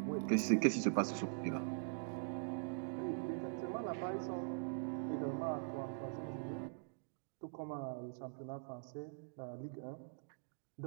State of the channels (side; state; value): left; silent; digital silence